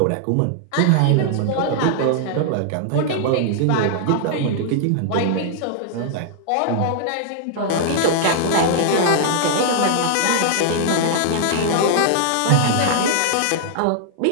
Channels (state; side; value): different; both; correlation -0.01